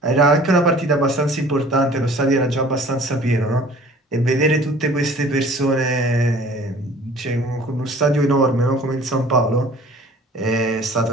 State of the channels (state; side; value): normal; both; correlation 0.49